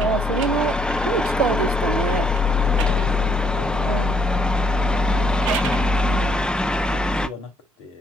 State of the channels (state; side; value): normal; both; correlation 0.69